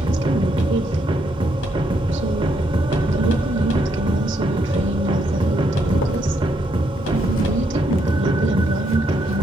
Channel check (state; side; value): normal; both; correlation 0.75